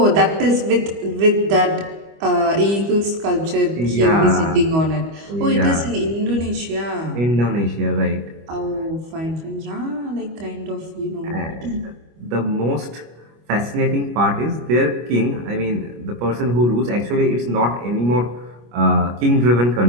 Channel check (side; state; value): left; late; 25 ms